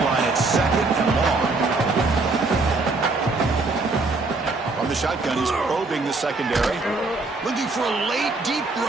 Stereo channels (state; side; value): quieter; left; 3.5 dB